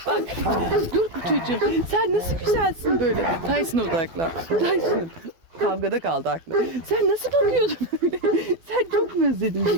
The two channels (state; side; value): late; left; 12 ms